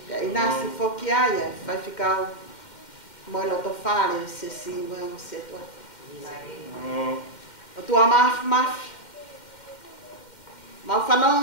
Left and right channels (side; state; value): right; late; 2.1 ms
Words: I nasi whoki ai e Faifekau mo e loto whare se si mo e se toa. O tua mafi. Mau